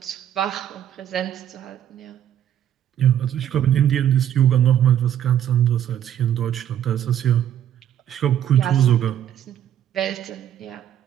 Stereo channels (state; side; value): quieter; left; 10.6 dB